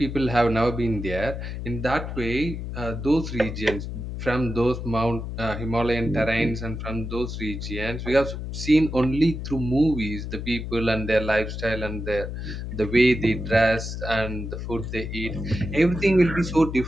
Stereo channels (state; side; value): noise; left; hum, 6 dB below the sound